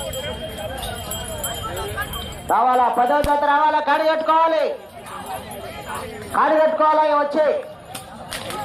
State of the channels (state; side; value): identical; both; correlation 1.00